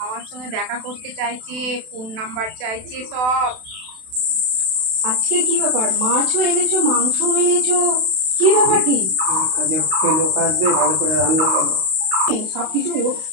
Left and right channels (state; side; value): late; left; 32 ms